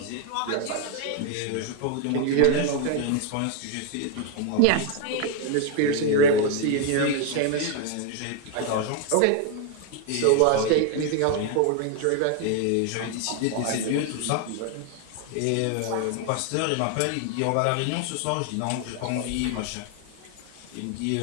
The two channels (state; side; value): different; both; correlation 0.01